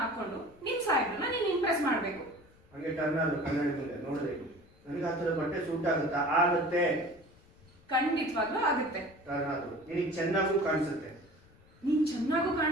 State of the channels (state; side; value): noise; left; rumble, 27 dB below the sound